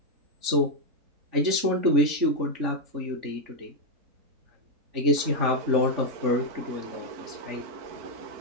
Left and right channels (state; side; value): late; left; 3.6 ms